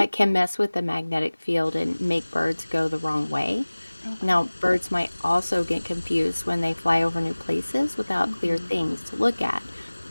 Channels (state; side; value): inverted; both; correlation -1.00